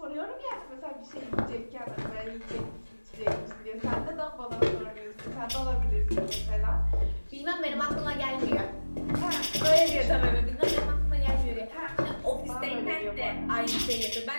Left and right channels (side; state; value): both; inverted; correlation -1.00